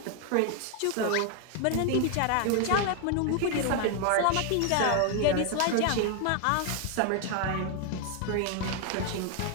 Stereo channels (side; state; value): both; different; correlation 0.01